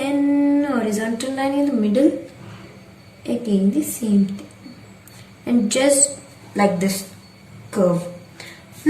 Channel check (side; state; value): both; identical; correlation 1.00